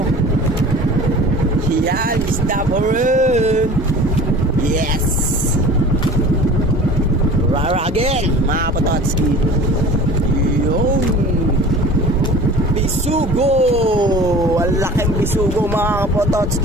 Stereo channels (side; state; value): both; normal; correlation 0.42